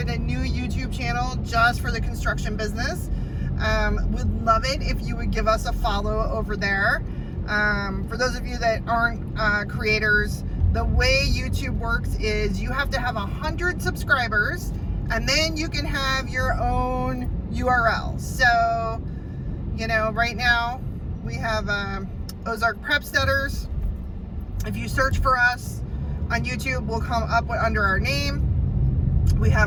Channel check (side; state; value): both; identical; correlation 1.00